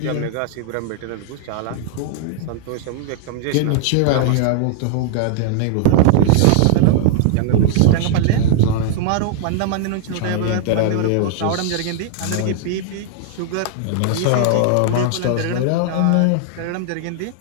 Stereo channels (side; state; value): both; different; correlation -0.01